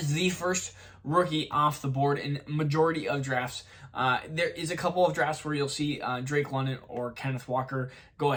the first rookie off the board in majority of drafts. There is a couple of drafts where you'll see Drake London or Kenneth Walker go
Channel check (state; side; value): identical; both; correlation 1.00